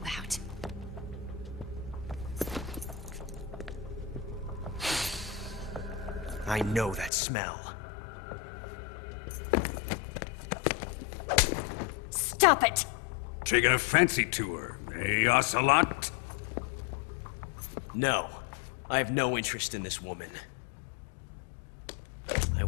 I know that smell. Stop it! Taking a fancy to her, eh, Ocelot? No. I have no interest in this woman. I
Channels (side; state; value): right; drops out; at 7.1 s